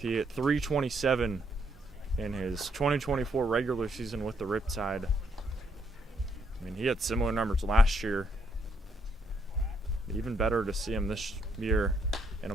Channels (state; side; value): normal; both; correlation 0.73